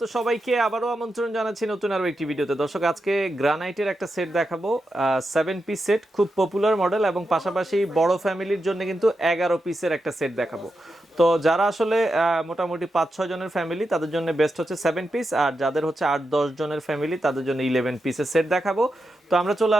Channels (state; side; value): normal; both; correlation 0.88